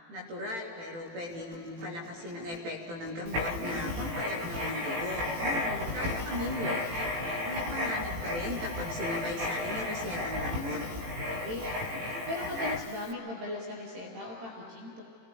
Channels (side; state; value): left; late; 18 ms